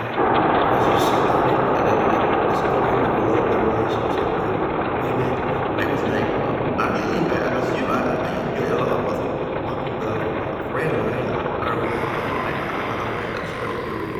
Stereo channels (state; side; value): identical; both; correlation 1.00